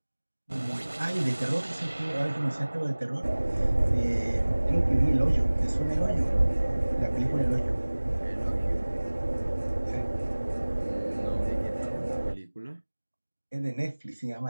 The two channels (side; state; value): both; inverted; correlation -1.00